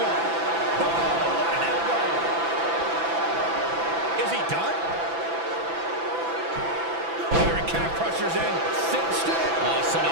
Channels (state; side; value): late; left; 6.0 ms